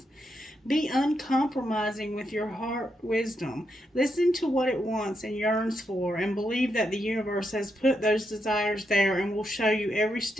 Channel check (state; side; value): normal; both; correlation 0.82